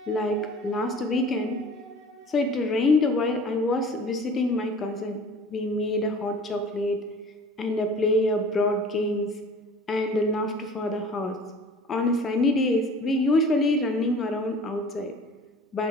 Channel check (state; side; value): normal; both; correlation 0.45